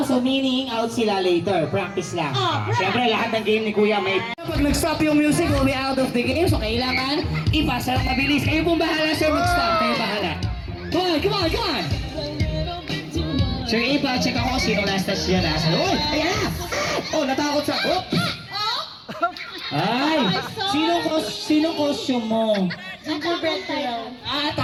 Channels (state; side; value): identical; both; correlation 1.00